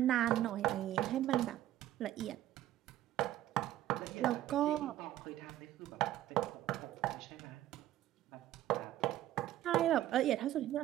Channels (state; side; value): quieter; left; 13.5 dB